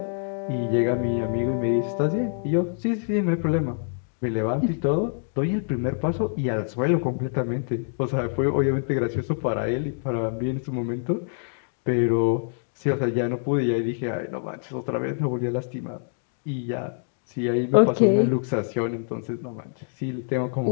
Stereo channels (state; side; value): silent; right; digital silence